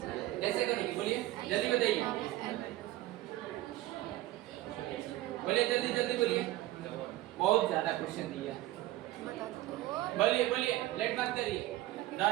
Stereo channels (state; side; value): quieter; left; 16.2 dB